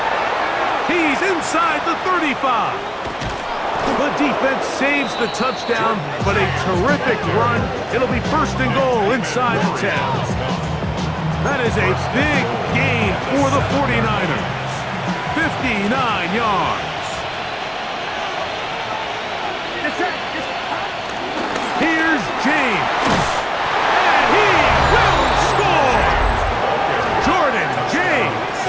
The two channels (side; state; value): both; identical; correlation 1.00